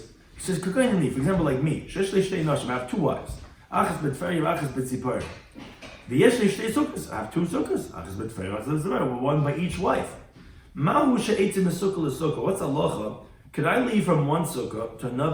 he says, for example, like me, I have 2 wives. Achas betferi, achas betzipor. V'yesh li shtei sukkahs. I have two sukkahs. Achas betferi, achas betzipor. One by each wife. Mahu she'etzim sukkah l'sukkah. What's halacha? Could I leave from one sukkah to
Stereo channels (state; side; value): identical; both; correlation 1.00